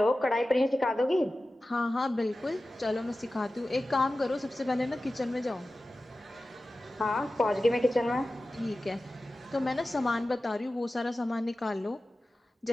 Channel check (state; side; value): normal; both; correlation 0.95